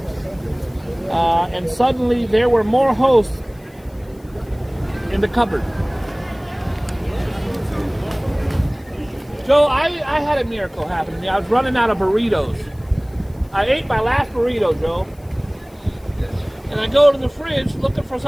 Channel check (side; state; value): left; noise; hiss, 30 dB below the sound